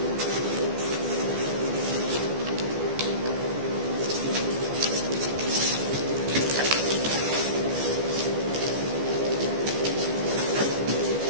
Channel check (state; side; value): late; left; 14 ms